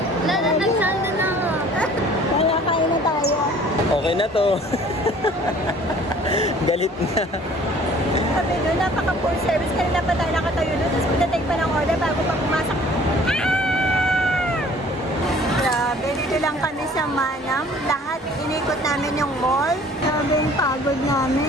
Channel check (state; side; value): normal; both; correlation 0.52